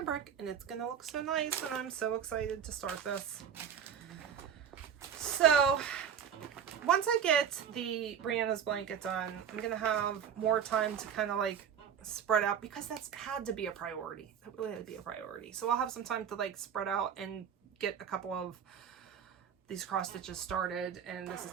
and it's going to look so nice, and I'm so excited to start this. So once I get the Brianna's blanket done, I'm going to have more time to kind of like spread out, because that's had to be a priority. That really had to be a priority. So I'll have some time to like spread out and get a couple of these cross stitches started, and this is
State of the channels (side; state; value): left; quieter; 8.1 dB